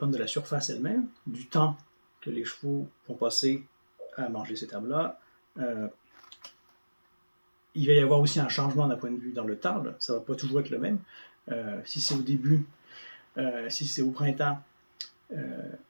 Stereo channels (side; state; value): both; inverted; correlation -1.00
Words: de la surface elle-même, du temps que les chevaux vont passer à manger cette herbe-là. Il va y avoir aussi un changement d'un point de vue dans le temps. Là. Ça ne va pas toujours être le même. Si c'est au début, si c'est au printemps,